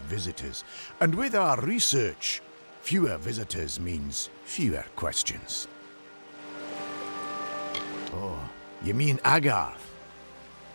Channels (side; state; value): both; inverted; correlation -1.00